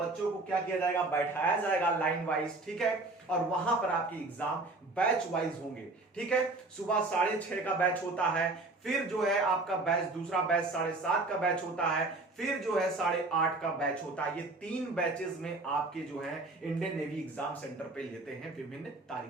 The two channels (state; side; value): quieter; left; 3.2 dB